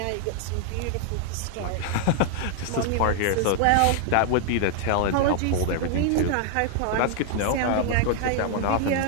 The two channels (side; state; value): both; different; correlation 0.00